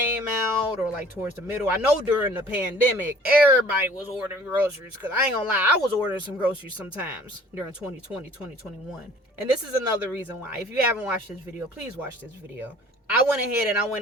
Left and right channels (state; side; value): normal; both; correlation 0.51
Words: out or like towards the middle. I know during the pandemic, everybody was ordering groceries, because I ain't gonna lie, I was ordering some groceries sometimes during 2020, 2021. And this is another reason why. If you haven't watched this video, please watch this video. I went ahead and I